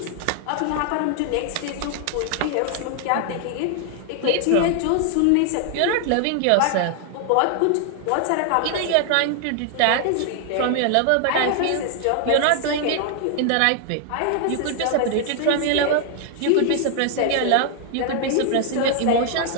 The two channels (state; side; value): different; both; correlation 0.00